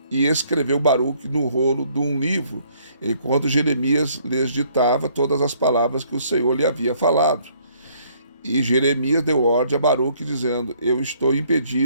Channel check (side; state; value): both; inverted; correlation -0.64